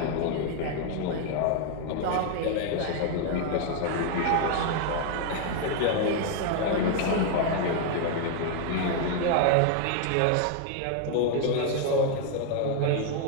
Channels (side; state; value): both; different; correlation 0.00